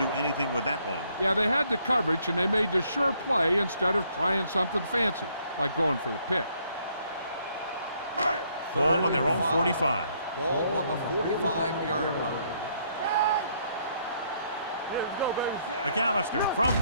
anything with that one. Yeah, they had the coverage, and they made the sure play instead of trying something fancy, like going for the pick. Ball on their own 45. Ball on the 45-yard line. McAllister from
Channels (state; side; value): inverted; both; correlation -0.69